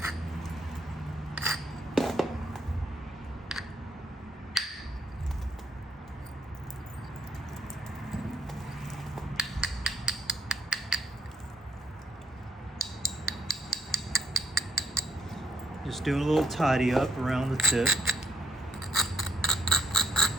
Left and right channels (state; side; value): normal; both; correlation 0.69